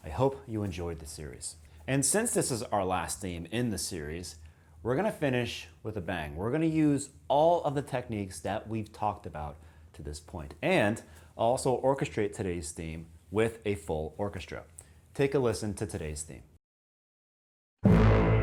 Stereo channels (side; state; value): both; identical; correlation 1.00